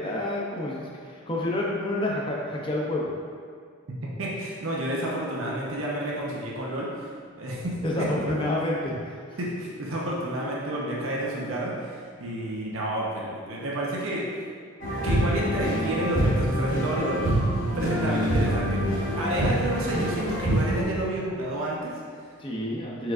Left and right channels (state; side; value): normal; both; correlation 0.47